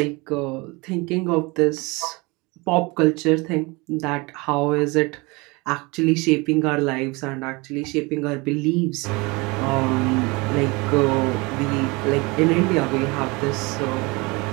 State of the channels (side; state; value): left; quieter; 25.9 dB